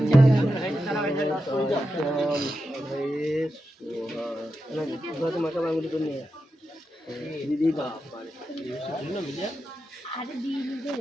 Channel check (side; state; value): both; normal; correlation 0.89